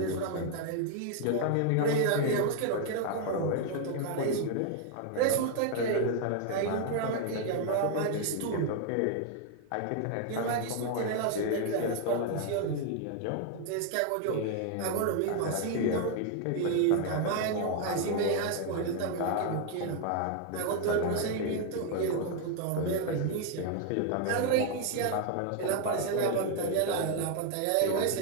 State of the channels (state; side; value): different; both; correlation 0.00